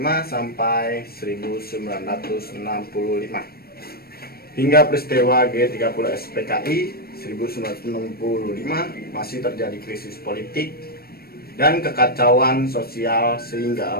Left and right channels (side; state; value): right; late; 0.44 ms